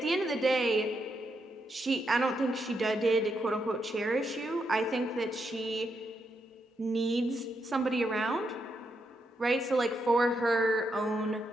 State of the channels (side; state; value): both; normal; correlation 0.81